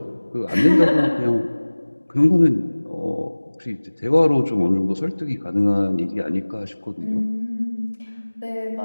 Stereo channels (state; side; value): inverted; both; correlation -1.00